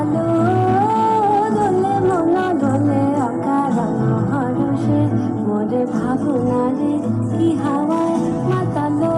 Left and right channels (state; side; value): identical; both; correlation 1.00